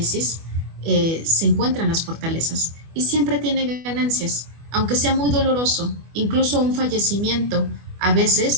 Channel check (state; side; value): late; left; 24 ms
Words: se encuentran las fortalezas y siempre tiene ganancias, aunque sea muy doloroso. Incluso un fallecimiento a